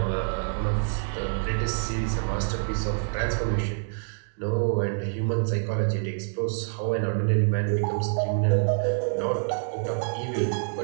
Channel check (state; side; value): silent; left; digital silence